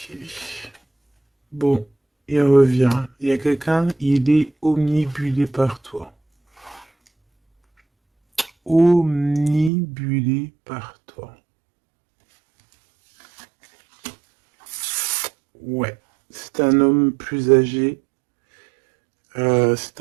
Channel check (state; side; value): drops out; left; at 9.7 s